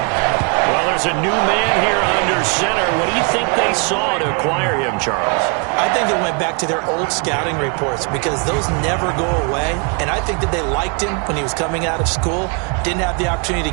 Well, there's a new man here under center. What do you think they saw to acquire him, Charles? I I think they went back to their old scouting reports because those never go away. And I think that they liked him when he was coming out of school, didn't have the opportunity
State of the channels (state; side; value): quieter; left; 35.0 dB